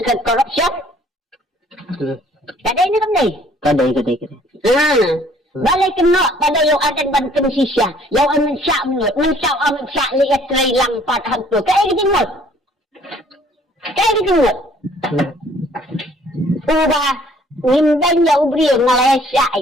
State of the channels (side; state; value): both; normal; correlation 0.59